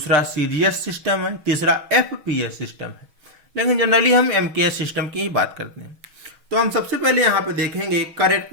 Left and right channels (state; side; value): late; left; 6.2 ms